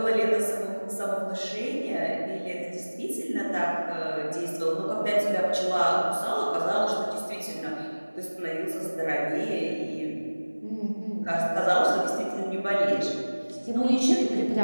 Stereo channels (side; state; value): both; inverted; correlation -1.00